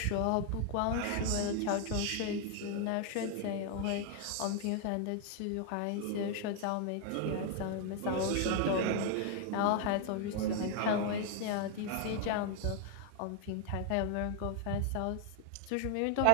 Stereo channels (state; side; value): different; both; correlation 0.00